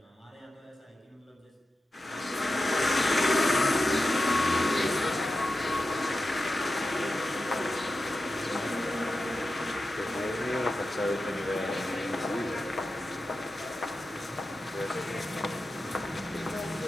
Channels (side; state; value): both; normal; correlation 0.92